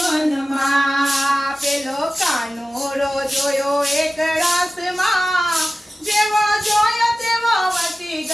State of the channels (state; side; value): normal; both; correlation 0.96